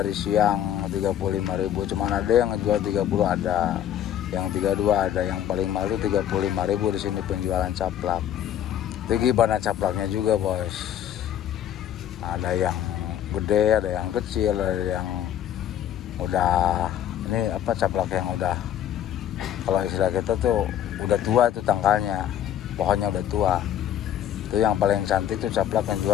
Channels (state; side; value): quieter; right; 10.7 dB